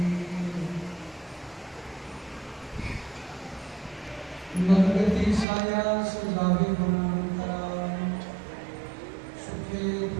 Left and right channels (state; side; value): drops out; left; at 5.5 s